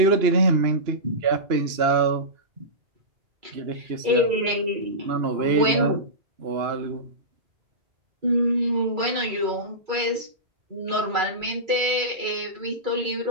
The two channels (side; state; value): left; late; 2.3 ms